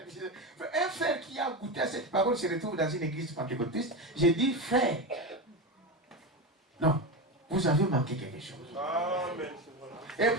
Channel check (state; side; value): normal; both; correlation 0.18